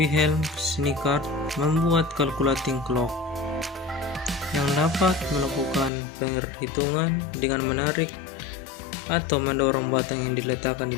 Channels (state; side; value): drops out; right; at 5.9 s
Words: Schweikart membuat calculating clock yang dapat melakukan perhitungan dengan menarik atau mendorong batang yang diletakkan di